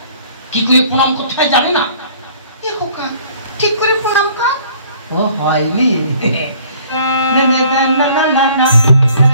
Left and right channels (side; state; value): both; inverted; correlation -0.55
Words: কি করে প্রণাম করতে হয় জানে না? খোকা ঠিক করে প্রণাম কর। ও হয়নি।